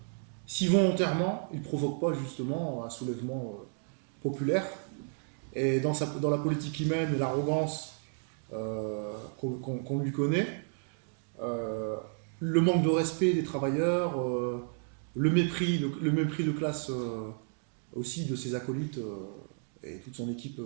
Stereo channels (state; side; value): silent; left; 56 dB below the other